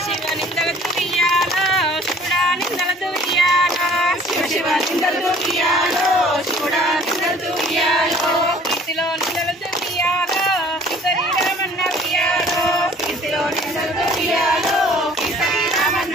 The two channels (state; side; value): normal; both; correlation 0.52